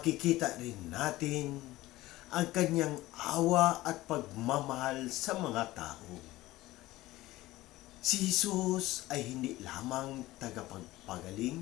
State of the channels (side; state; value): right; quieter; 17.5 dB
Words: rin natin ang kanyang awa at pagmamahal sa mga tao. Si Jesus ay hindi lamang tagapagpagaling,